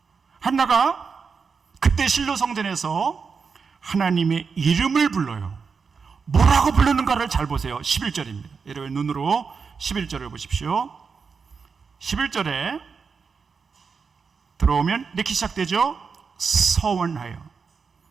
한나가 그때 실로 성전에서 하나님의 이름을 불러요. 뭐라고 부르는가를 잘 보세요. 11절입니다. 여러분 눈으로 11절을 보십시오. 11절에 들어오면 이렇게 시작되죠. 서원하여.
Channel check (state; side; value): quieter; left; 5.4 dB